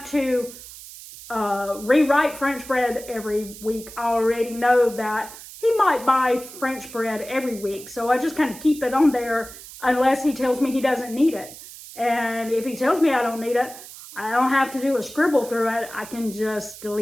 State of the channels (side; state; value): right; noise; hiss, 15 dB below the sound